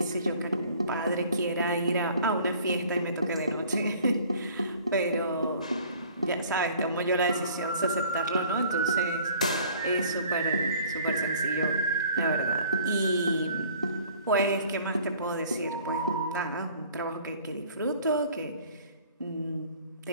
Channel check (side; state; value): both; inverted; correlation -0.52